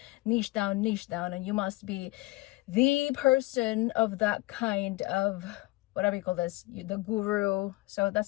niche down, and you must be the person of that kind of whatever you call this, the guru. So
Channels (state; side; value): quieter; right; 21.2 dB